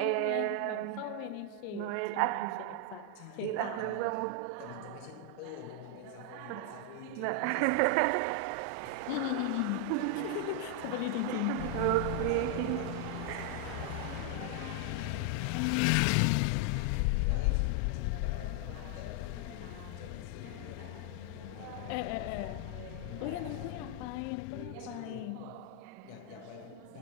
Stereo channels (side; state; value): both; different; correlation 0.00